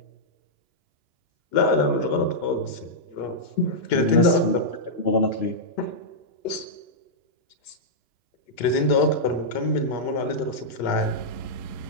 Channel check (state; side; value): late; right; 2.9 ms